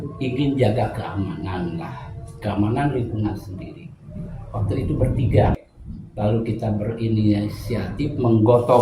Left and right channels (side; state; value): both; identical; correlation 1.00